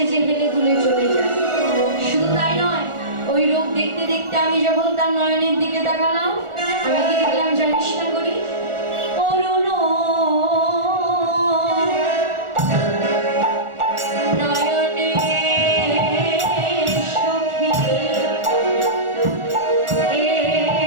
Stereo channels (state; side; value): late; left; 1.4 ms